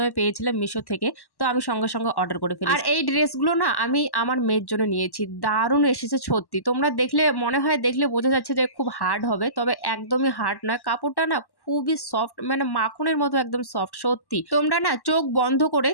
পেয়েছিলাম মিশো থেকে। তো আমি সঙ্গে, সঙ্গে অর্ডার করে ফেলেছি। আর এই ড্রেসগুলো না আমি আমার মেয়ের জন্য নিয়েছি। দারুণ এসেছে সত্যি। তোমরা দেখলে মনে হয় দেখলে বোঝা যাচ্ছে যে খুব হার্ড হবে। তবে একদমই হার্ড নয়। কাপড়টা না খুবই সফট, মানে মাখনের মতো একদম সফট সত্যি। তোমরা না চোখ বন্ধ করে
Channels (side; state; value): right; late; 1.1 ms